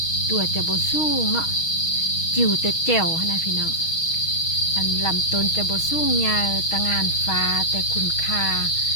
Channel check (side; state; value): right; late; 6.3 ms